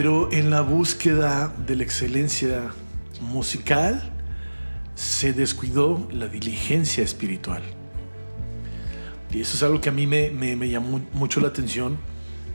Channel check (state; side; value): inverted; both; correlation -1.00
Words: en la búsqueda de la excelencia musical se descuidó la diligencia espiritual. Y eso es algo que a mí me llamó mucho la atención,